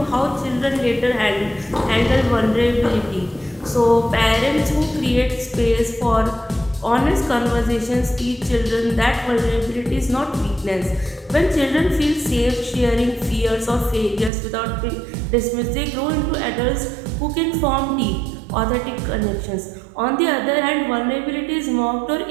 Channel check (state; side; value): drops out; left; at 14.3 s